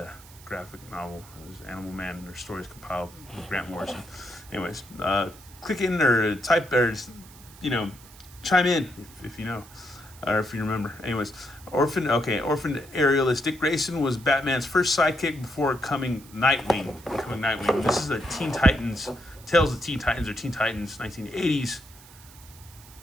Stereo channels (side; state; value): right; noise; hiss, 21 dB below the sound